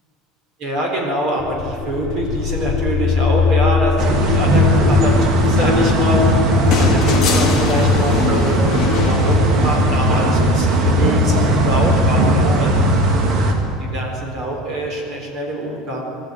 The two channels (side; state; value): both; normal; correlation 0.38